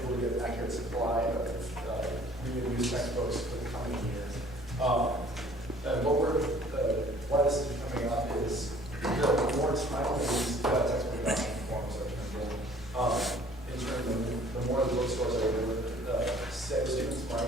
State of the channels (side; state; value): both; normal; correlation 0.54